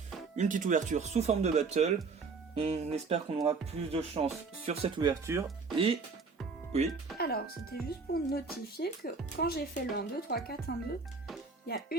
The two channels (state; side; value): quieter; left; 4.5 dB